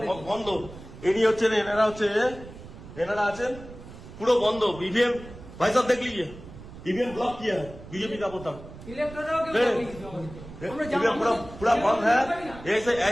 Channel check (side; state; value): right; noise; rumble, 16 dB below the sound